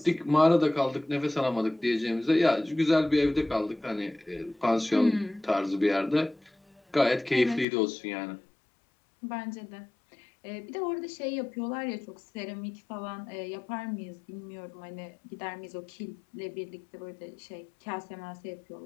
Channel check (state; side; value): drops out; right; at 7.7 s